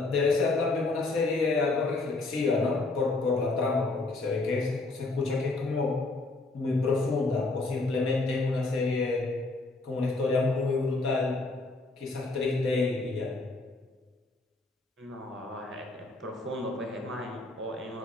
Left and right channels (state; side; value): quieter; right; 3.3 dB